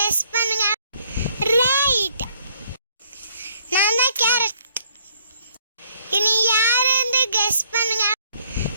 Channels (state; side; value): inverted; both; correlation -0.66